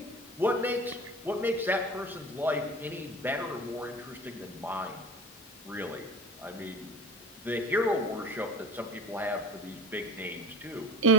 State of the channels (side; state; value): both; normal; correlation 0.35